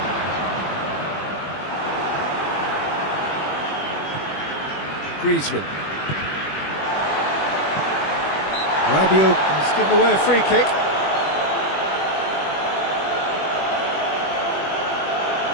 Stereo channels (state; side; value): late; right; 21 ms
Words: Griezmann. Rabiot has given away a free kick.